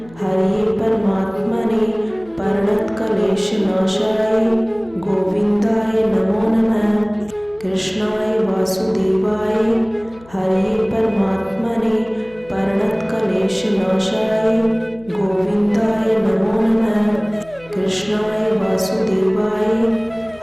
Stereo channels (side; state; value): left; noise; hum, 25 dB below the sound